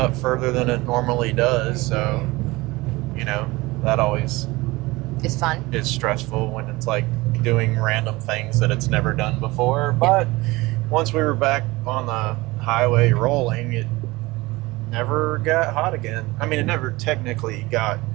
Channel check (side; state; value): left; quieter; 21.4 dB